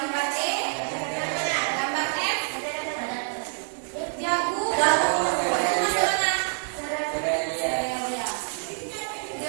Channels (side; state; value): left; silent; 60 dB below the other